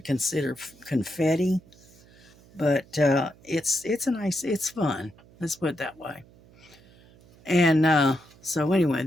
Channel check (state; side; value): noise; right; hum, 26 dB below the sound